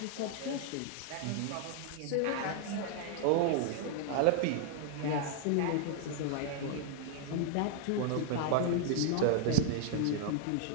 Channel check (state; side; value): different; both; correlation 0.00